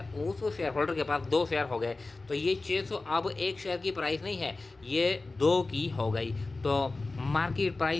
शेयर होल्डर के पास 2 शेयर हो गए। तो ये 600 अब एक शेयर की प्राइस नहीं है, ये 2 की हो गई। तो मार्केट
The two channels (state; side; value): quieter; right; 3.4 dB